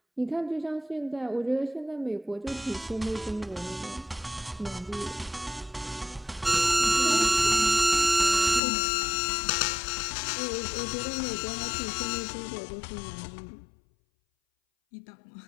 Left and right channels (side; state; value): right; drops out; at 8.6 s